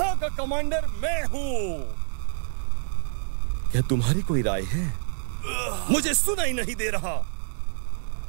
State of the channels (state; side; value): silent; left; 60 dB below the other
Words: का कमांडर मैं हूं। क्या तुम्हारी कोई राय है? मुझे सुनाई नहीं दे रहा।